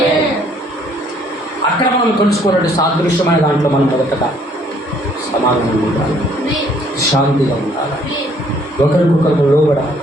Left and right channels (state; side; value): normal; both; correlation 0.63